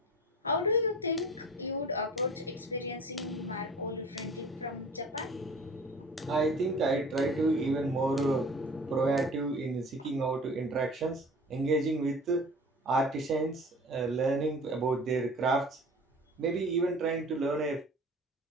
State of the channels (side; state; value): both; normal; correlation 0.42